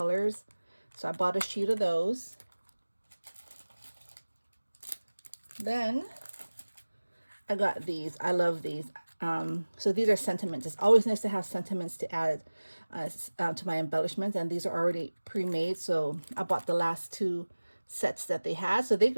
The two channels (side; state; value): both; inverted; correlation -1.00